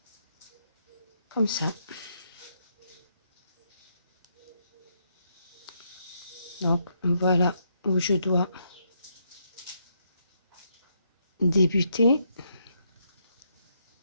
Comme ça. Donc, voilà où je dois débuter.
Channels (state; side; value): inverted; both; correlation -0.77